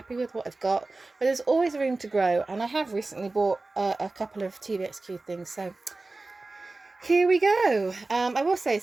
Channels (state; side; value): quieter; left; 3.3 dB